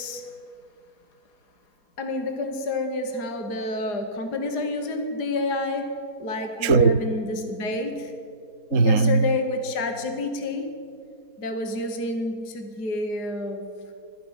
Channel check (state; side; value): late; right; 4.2 ms